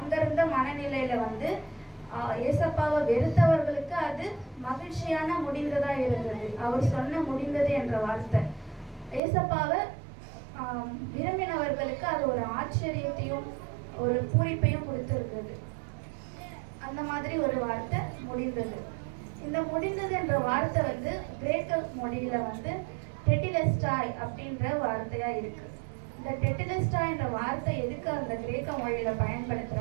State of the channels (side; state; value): left; drops out; at 9.2 s